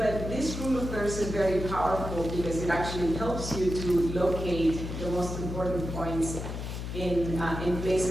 this rule of thirds is very powerful because it actually helps you to locate the most important points in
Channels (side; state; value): left; noise; hum, 6 dB below the sound